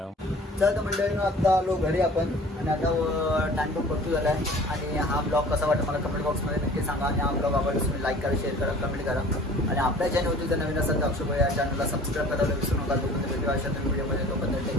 चल तर मंडळीनं आता आलो घरी आपण आणि आता टाइम पण भरपूर झाला आहे. आणि हा ब्लॉग कसा वाटला मला कमेंट बॉक्समध्ये नक्की सांगा. आणि हा ब्लॉग आवडला तुम्ही लाईक करा, शेअर करा, कमेंट करा. आणि आपल्या चॅनलवरती जर नवीन असेल तर अक्षय या चॅनलला सबस्क्राईब करायला विसरू नका. तोपर्यंत भेटूया अशा व्हिडिओमध्ये. तोपर्यंत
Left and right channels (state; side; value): normal; both; correlation 0.47